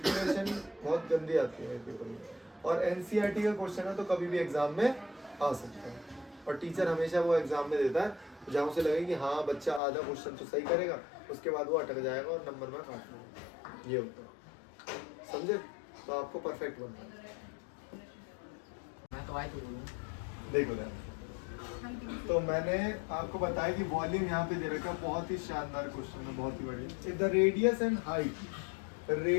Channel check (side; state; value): right; drops out; at 9.8 s